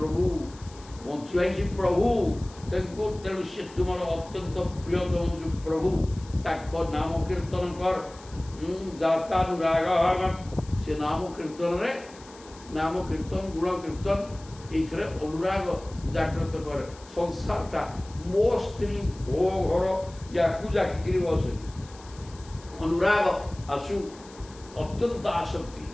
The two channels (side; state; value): left; noise; hiss, 22 dB below the sound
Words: ବଞ୍ଚିବା ହିଁ ସେ ପ୍ରଭୁ ତାଙ୍କୁ ତେଣୁ ସେ ତୁମର ଅତ୍ୟନ୍ତ ପ୍ରିୟତମ ଯେଉଁ ପ୍ରଭୁ ତାଙ୍କ ନାମ କୀର୍ତ୍ତନ କର ଜାତାନୁରାଗ ସେ ନାମ କୀର୍ତ୍ତନରେ ନାମ କୀର୍ତ୍ତନ ଗୁଣ କୀର୍ତ୍ତନ ଏଇଥିରେ ଅନୁରାଗ ଜାଗ୍ରତ କରେ ସଂସାରଟା ମୋ ସ୍ତ୍ରୀ ମୋ ଘର ୟାକୁ ଜାକିକିରି ବସେ ଅନୁରାଗ ଆସୁ ଅତ୍ୟନ୍ତ ଆସକ୍ତି